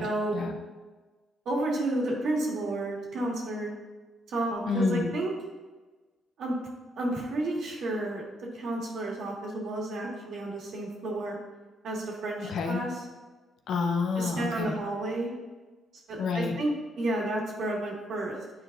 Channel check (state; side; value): normal; both; correlation 0.75